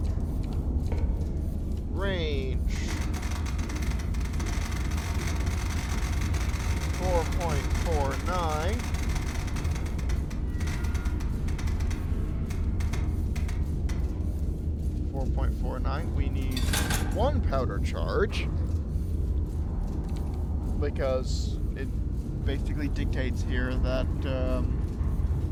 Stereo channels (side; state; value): both; identical; correlation 1.00